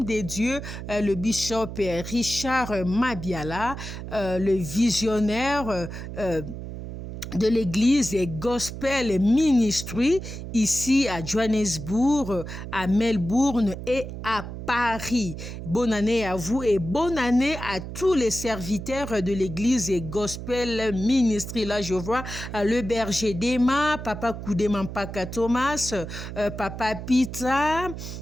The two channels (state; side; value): noise; right; hum, 9 dB below the sound